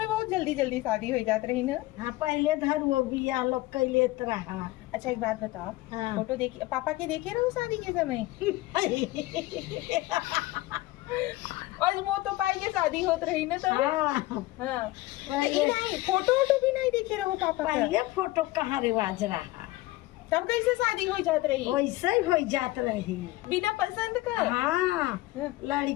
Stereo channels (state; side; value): quieter; right; 18.6 dB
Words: बहुत जल्दी जल्दी शादी हो जात रही ना? हाँ पहले धर वो बिया लोग कैले रहा। अच्छा एक बात बताओ। हाँ। फोटो देखी पापा के देखे रहू शादी के समय? और वो तो पाई के शादी होत रही ना तब? हाँ हाँ। तो ये नहीं फोटो वोटो भी नहीं देखे रहो पापा का? पहले फोटो कहाँ रिवाज रहा, तब कैसे शादी हो जात रही? वैसे ही हो जात रही। बिना पसंद का? हाँ